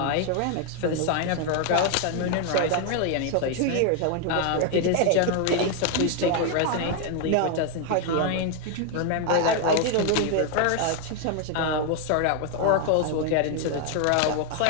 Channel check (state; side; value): different; both; correlation 0.01